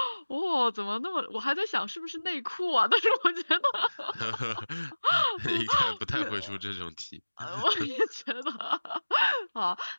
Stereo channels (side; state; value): both; inverted; correlation -1.00